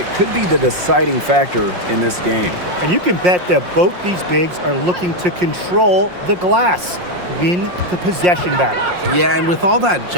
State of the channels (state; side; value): late; left; 5.6 ms